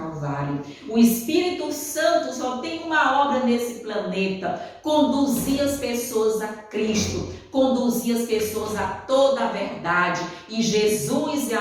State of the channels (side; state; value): both; identical; correlation 1.00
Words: O Espírito Santo só tem uma obra nesse planeta: conduzir as pessoas a Cristo, conduzir as pessoas a toda a verdade. E Jesus é